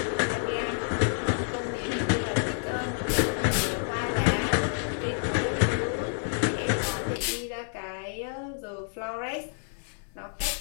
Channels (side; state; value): right; silent; 59 dB below the other